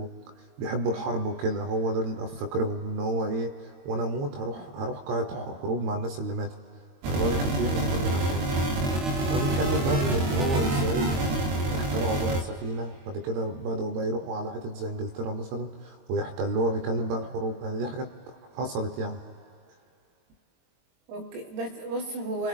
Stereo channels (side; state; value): left; late; 22 ms